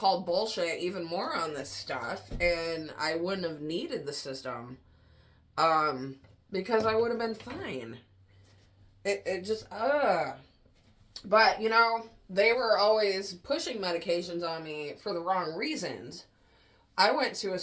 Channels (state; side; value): identical; both; correlation 1.00